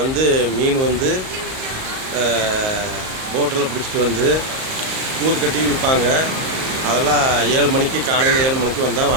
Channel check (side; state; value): left; late; 38 ms